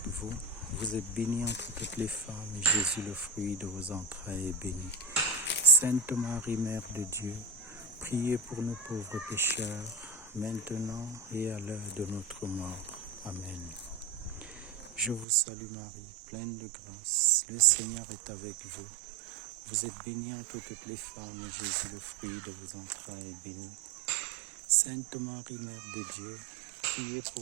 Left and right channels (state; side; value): drops out; left; at 15.2 s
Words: vous. Vous êtes bénie entre toutes les femmes, et Jésus, le fruit de vos entrailles, est béni. Sainte Marie, Mère de Dieu, priez pour nous pauvres pécheurs, maintenant et à l'heure de notre mort. Amen. Je vous salue Marie, pleine de grâce, le Seigneur est avec vous. Vous êtes bénie entre toutes les femmes, et Jésus, le fruit de vos entrailles, est béni. Sainte Marie, Mère de Dieu, priez